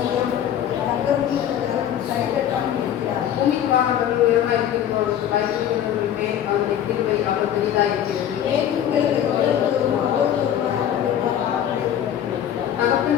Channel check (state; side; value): quieter; right; 10.3 dB